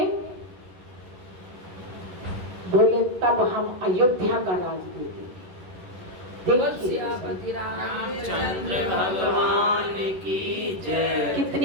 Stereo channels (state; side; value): late; left; 11 ms